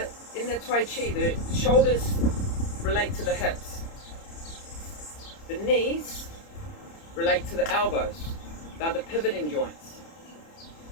Taiji, the shoulders relate to the hips. The knees relate to the elbows. They're the pivoting joints.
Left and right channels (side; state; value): right; late; 30 ms